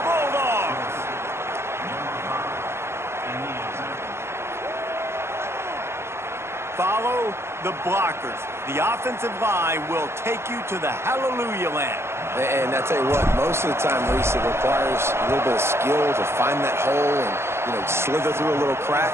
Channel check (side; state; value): left; late; 0.12 ms